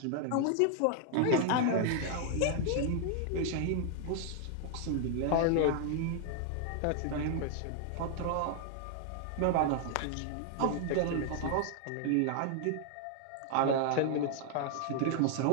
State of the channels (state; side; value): different; both; correlation 0.00